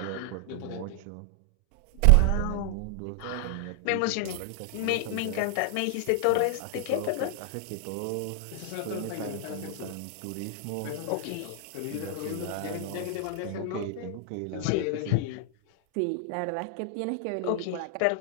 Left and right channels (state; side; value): different; both; correlation 0.00